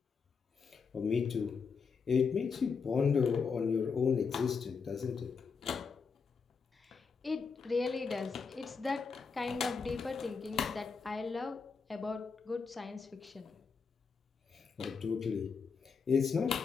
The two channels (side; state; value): right; quieter; 5.4 dB